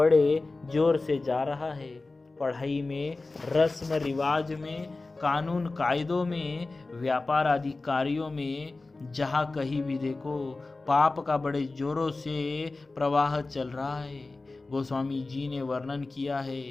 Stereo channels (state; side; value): quieter; right; 3.4 dB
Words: जोर से जा रहा है। पढ़ाई में, रस्म रिवाज में, कानून कायदों में, व्यापार आदि कार्यों में, जहाँ कहीं भी देखो पाप का बड़े जोरों से प्रवाह चल रहा है। गोस्वामी जी ने वर्णन किया है,